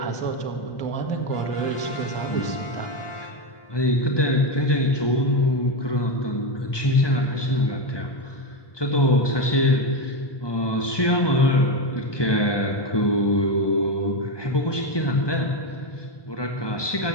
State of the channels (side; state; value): right; late; 1.2 ms